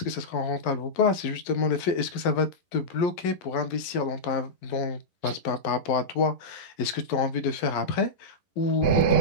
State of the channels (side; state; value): right; late; 11 ms